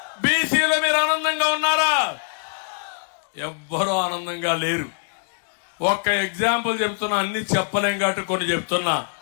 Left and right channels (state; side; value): silent; right; digital silence